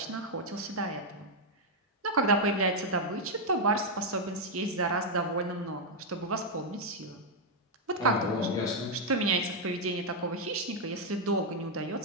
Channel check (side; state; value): both; normal; correlation -0.01